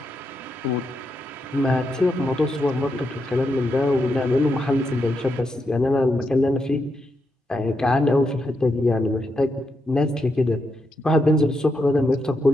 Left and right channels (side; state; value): both; normal; correlation 0.83